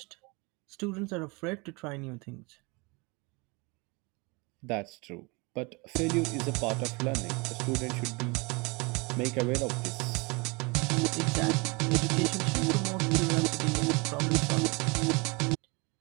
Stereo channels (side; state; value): left; quieter; 27.7 dB